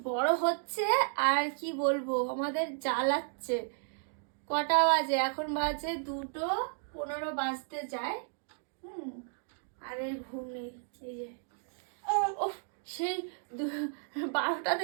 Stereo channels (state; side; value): silent; left; digital silence